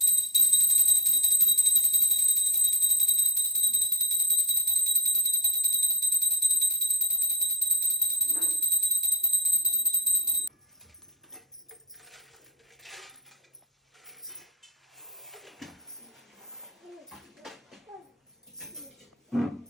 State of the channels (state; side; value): normal; both; correlation 0.19